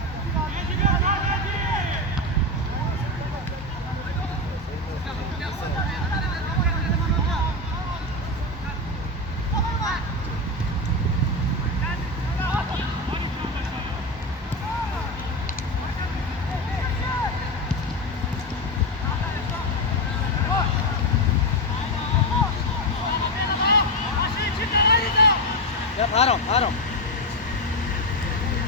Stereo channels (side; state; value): both; normal; correlation 0.13